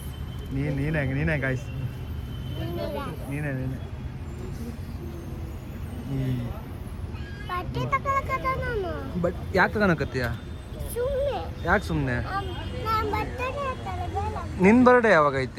ನೀನೇ ಗಾಯ್ಸ್, ನೀನೇ ಬಟ್ ಯಾಕೆ ತಗೊಳಕತ್ತೀಯ? ಯಾಕೆ ಸುಮ್ಮನೆ? ನಿನ್ನ ಬರ್ಡೇ ಯಾವಾಗ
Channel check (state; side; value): identical; both; correlation 1.00